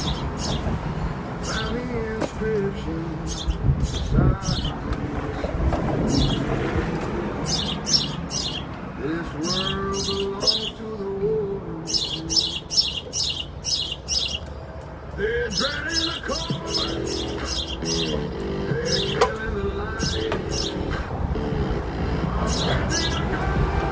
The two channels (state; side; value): identical; both; correlation 1.00